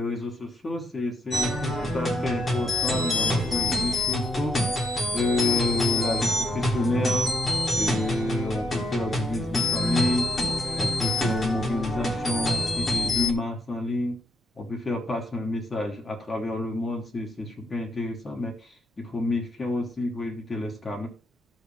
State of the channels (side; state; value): both; normal; correlation 0.78